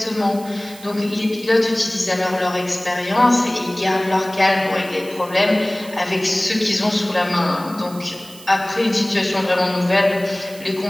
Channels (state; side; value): noise; right; hiss, 19 dB below the sound